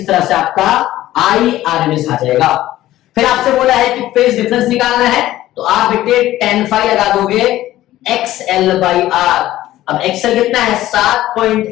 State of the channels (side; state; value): right; quieter; 14.7 dB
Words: तरह से आपका आई आरएमएस आ जाएगा। फिर आपसे बोला है कि फेज डिफरेंस निकालना है, तो आप बेटे tan phi लगा दोगे XL/R। अब XL कितना है